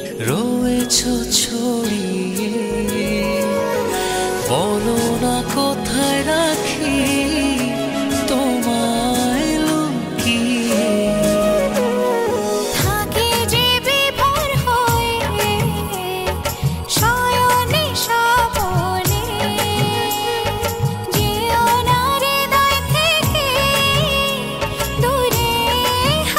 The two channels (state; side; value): identical; both; correlation 1.00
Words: রয়েছ ছড়িয়ে, বলো না কোথায় রাখি তোমায় লুকিয়ে। থাকে যে বিভোর হয়ে শয়নে স্বপনে, যেও না হৃদয় থেকে দূরে